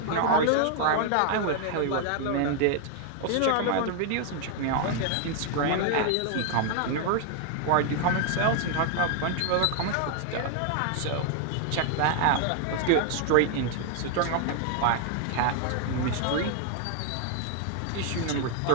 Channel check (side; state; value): both; different; correlation 0.00